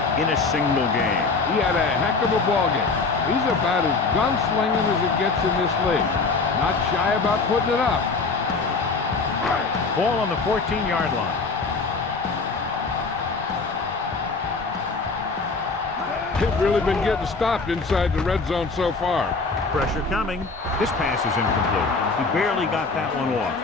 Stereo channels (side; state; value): right; quieter; 4.2 dB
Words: in a single game. He had a heck of a ball game. He's about as gunslinging as it gets in this league. Not shy about putting it up. Ball on the 14-yard line. They've really been getting stopped inside the red zone so far. Pressure coming. This pass is incomplete. He barely got that one off.